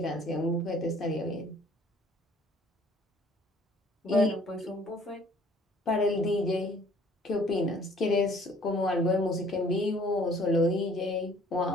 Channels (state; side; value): normal; both; correlation 0.56